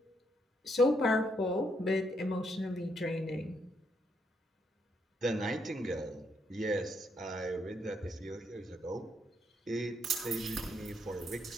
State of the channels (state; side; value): normal; both; correlation 0.76